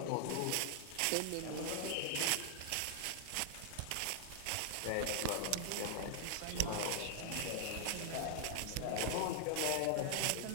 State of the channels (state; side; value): different; both; correlation 0.00